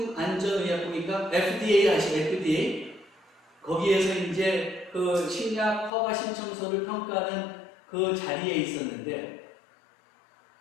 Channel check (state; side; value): drops out; right; at 5.9 s